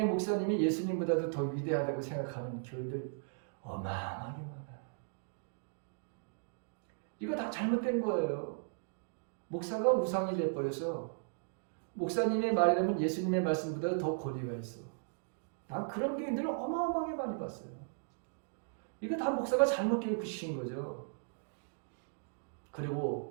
목사님이 예수님보다도 더 위대하다고 생각하는 교인들 어마어마하게 많아요. 이거 다 잘못된 거예요. 목사가 우상이 돼버려서 목사님의 말이라면 예수님의 말씀보다 더 권위가 있어. 난 그런 교인들을 어마어마하게 많이 봤어요. 이거 다 목사가 잘못 교육시킨 거죠.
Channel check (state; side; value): silent; left; digital silence